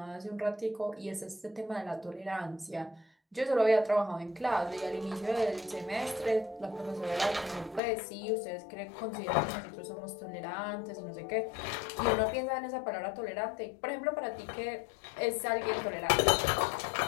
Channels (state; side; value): drops out; right; at 7.8 s